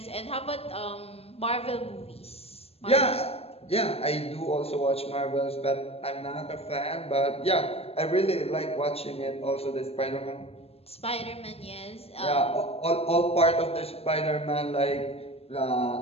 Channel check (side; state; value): right; late; 0.29 ms